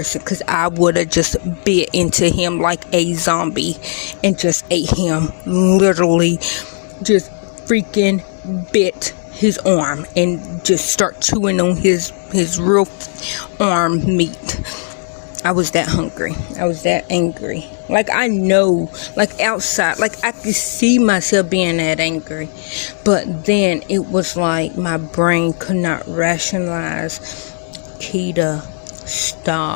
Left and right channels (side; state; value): right; silent; digital silence